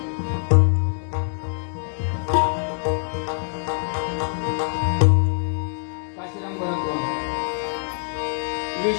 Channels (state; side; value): silent; right; 63 dB below the other